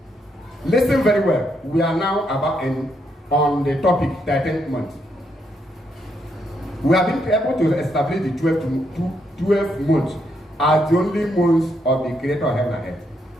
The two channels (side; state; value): both; normal; correlation 0.77